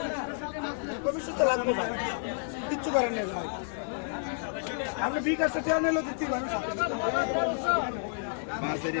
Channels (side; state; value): right; silent; digital silence